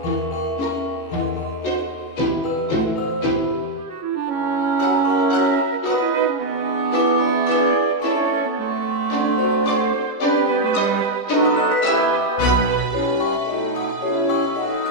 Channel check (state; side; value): late; right; 14 ms